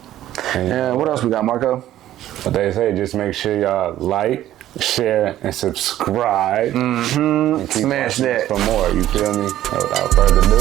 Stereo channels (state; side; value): quieter; left; 13.1 dB